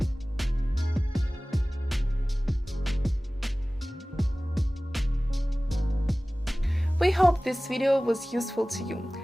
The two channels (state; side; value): normal; both; correlation 0.98